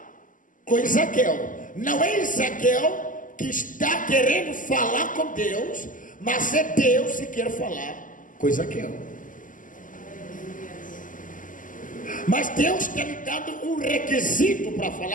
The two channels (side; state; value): right; late; 0.38 ms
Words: com Ezequiel. Não é Ezequiel que está querendo falar com Deus, mas é Deus que quer falar com Ezequiel. Mas Deus está lhe dando um requisito para